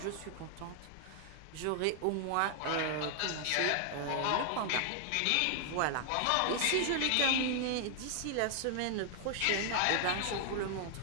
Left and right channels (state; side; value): different; both; correlation 0.00